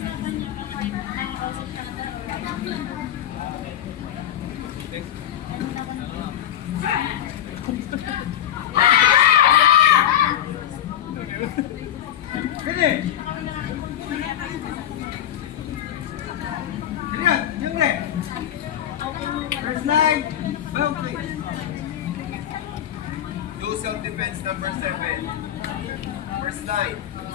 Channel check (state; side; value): quieter; right; 11.0 dB